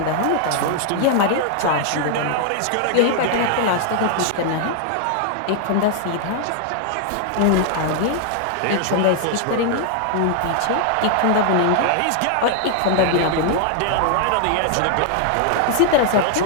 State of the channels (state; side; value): different; both; correlation 0.00